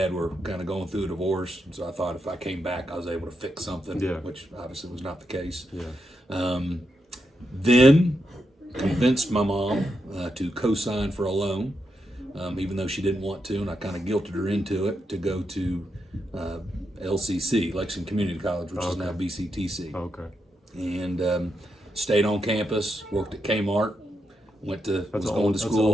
were kind of going through a divorce, so I thought if I came back, I was able to fix something, which obviously was not the case. Yeah. Then convinced my mom to co-sign for a loan, even though she didn't want to, and I kind of guilted her into it, to go to LCC, Lexington Community College, which is now BCTC. Okay. And stayed on campus, worked at Kmart. Was going to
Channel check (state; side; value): normal; both; correlation 0.84